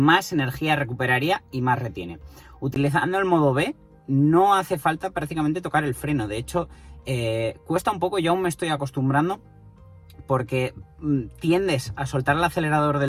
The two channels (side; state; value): both; identical; correlation 1.00